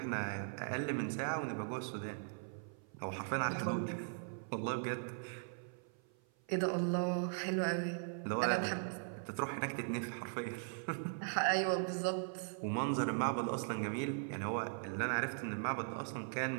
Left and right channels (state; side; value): silent; left; 51 dB below the other